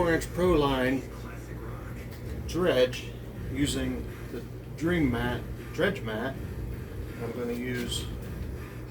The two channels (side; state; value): both; identical; correlation 1.00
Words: Pro Line dredge using the dredge mat. I'm going to use